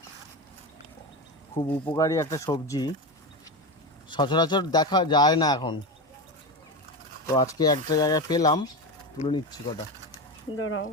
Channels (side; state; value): both; normal; correlation 0.19